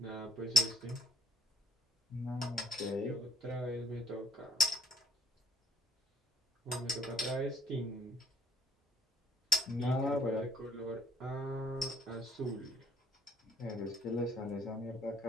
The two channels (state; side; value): normal; both; correlation 0.61